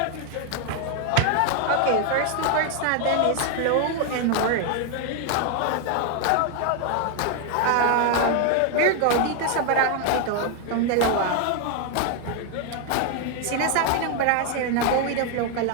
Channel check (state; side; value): different; both; correlation 0.00